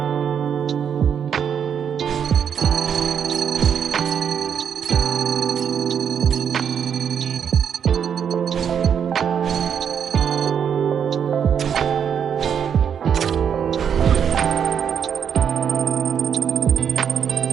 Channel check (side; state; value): left; quieter; 7.9 dB